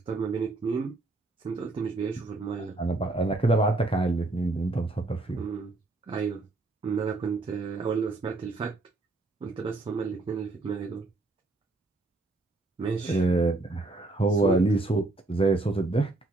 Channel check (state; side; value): quieter; left; 3.0 dB